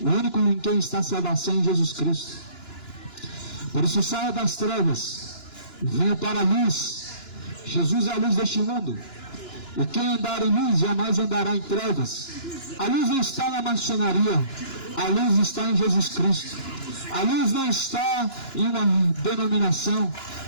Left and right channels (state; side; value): late; right; 2.9 ms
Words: O único em quem está a salvação em Jesus Cristo. Por isso saia das trevas, venha para a luz. Jesus é a luz deste mundo. E quem andar em luz jamais andará em trevas. A luz não está na maçonaria, a luz está em Jesus Cristo. A luz não está em uma denominação,